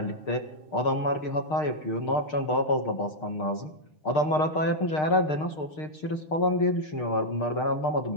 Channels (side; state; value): right; late; 6.6 ms